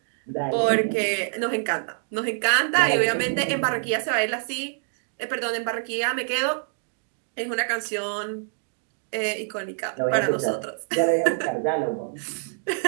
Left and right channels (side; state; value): left; silent; digital silence